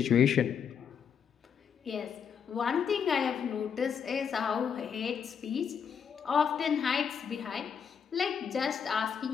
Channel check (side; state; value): right; quieter; 7.3 dB